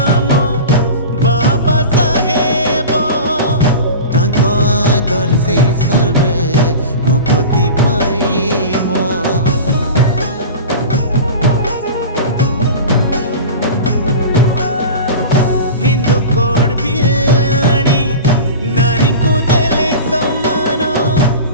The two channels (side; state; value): both; inverted; correlation -0.32